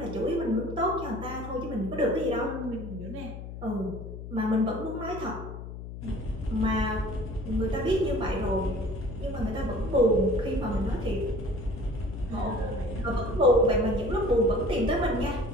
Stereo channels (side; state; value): left; noise; hum, 10 dB below the sound